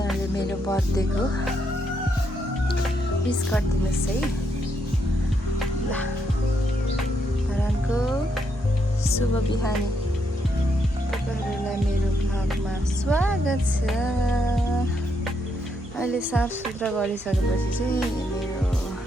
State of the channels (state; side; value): normal; both; correlation 0.77